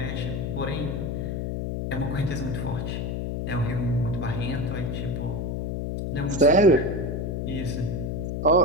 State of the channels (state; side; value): noise; left; hum, 2 dB below the sound